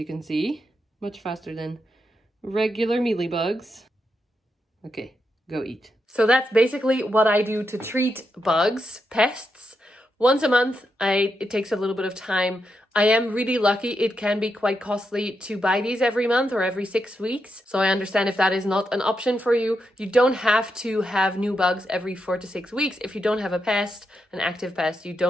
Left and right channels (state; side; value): normal; both; correlation 0.84